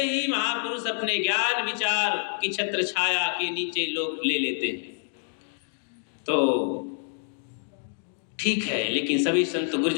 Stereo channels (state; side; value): silent; right; 60 dB below the other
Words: ही महापुरुष अपने ज्ञान विचार की छत्र छाया के नीचे लोग ले लेते हैं। तो ठीक है, लेकिन सभी संत